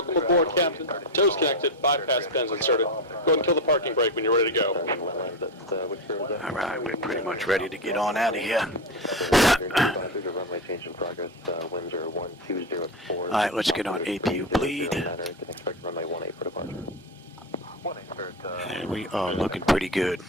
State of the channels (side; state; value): both; normal; correlation 0.15